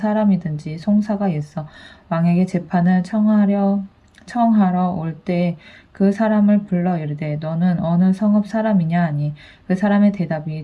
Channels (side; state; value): both; identical; correlation 1.00